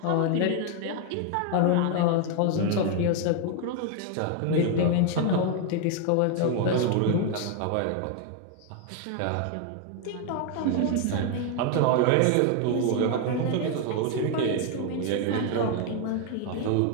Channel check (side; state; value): both; different; correlation 0.01